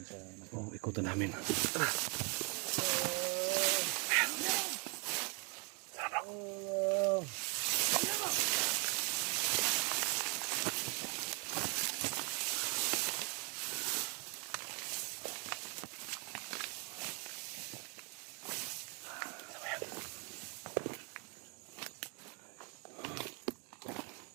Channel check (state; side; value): quieter; left; 33.9 dB